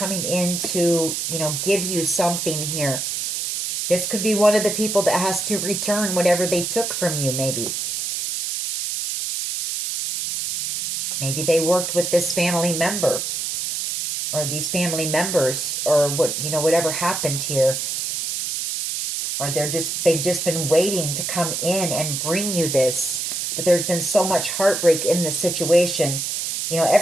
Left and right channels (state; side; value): noise; right; hiss, 2 dB below the sound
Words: in to, you know, give you something here. This could be one of the people that has to return whatever they took from you, maybe. Maybe they worked with this family member, or these family members, or what, you know, whatever happened here. Or they've just been waiting to come in and bring you this. But there's been so much heartbreak in this situation. You know,